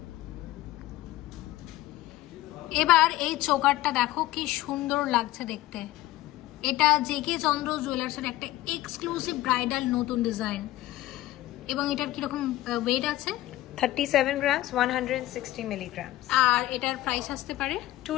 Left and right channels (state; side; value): quieter; right; 16.2 dB